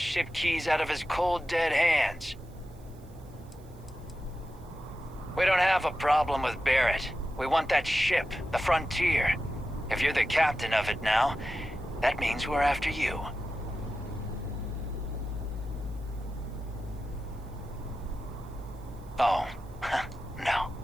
keys out of his cold, dead hands? We don't have a problem with Barrett. We want that ship, the Frontier. If you're the captain of it now, that means we're after you. Oh, no.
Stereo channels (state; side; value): noise; right; hiss, 29 dB below the sound